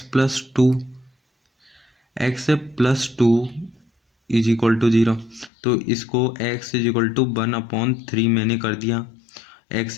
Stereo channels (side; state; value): right; drops out; at 5.5 s